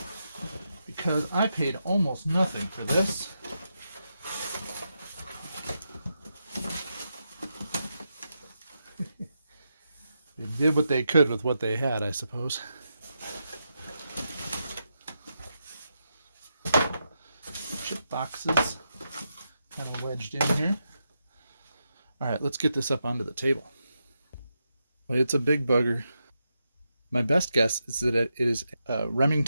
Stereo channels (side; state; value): both; inverted; correlation -0.85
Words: Because I paid almost nothing for this. They did what they could with what they had, I suppose. Chip boxes kind of wedged in here. All right, let's get this up onto the table. Well, it's a big bugger. My best guess is that it is a